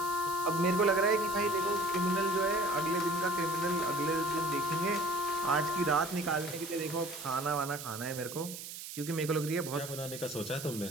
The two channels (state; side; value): noise; right; hiss, 10 dB below the sound